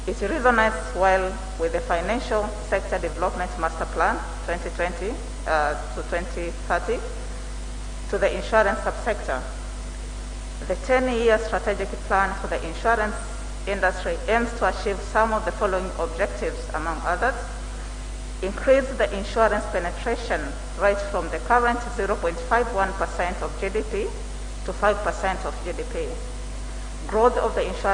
It resonates well with the Financial Sector Development Master Plan 2020 to 2030 to the insurance subsector. The 10-year strategic plan for the insurance industry aims to achieve some of the following objectives, among others: increase the insurance penetration rate from the current 0.51% of GDP to 5% of GDP. Growth of the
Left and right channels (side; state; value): both; identical; correlation 1.00